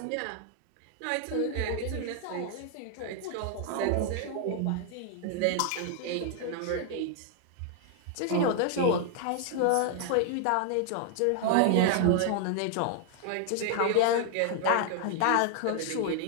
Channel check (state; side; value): different; both; correlation 0.00